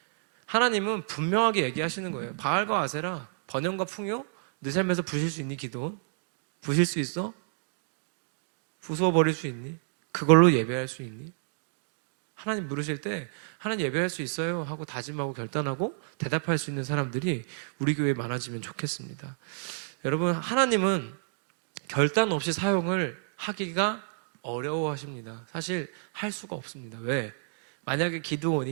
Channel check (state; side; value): silent; left; digital silence